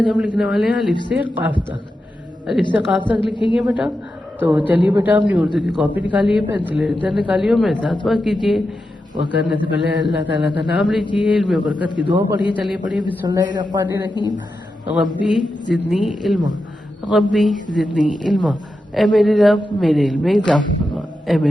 हम लिखने वाले हैं अलिफ से काफ तक। अलिफ से काफ तक लिखेंगे बेटा। तो चलिए बेटा, अपनी उर्दू की कॉपी निकालिए, पेंसिल इधर निकालिए और मेरे साथ वर्क कीजिए। वर्क करने से पहले अल्लाह ताला का नाम लीजिए, इल्म बरकत की दुआ पढ़िए। चलिए पढ़िए, बिस्मिल्लाहिर्रहमानिर्रहीम। रब्बी ज़िदनी इल्मा, रब्बी ज़िदनी इल्मा। ए मेरे रब, मेरे इल्म में इजाफा फरमा। ए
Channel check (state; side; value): normal; both; correlation 0.89